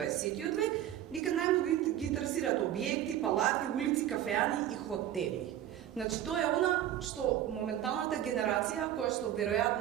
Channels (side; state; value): left; quieter; 11.8 dB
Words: век, дека најмногу ги интересираат објекти, палати, улици, кафеани и хотели. Значи тоа е она што моменталната генерација која што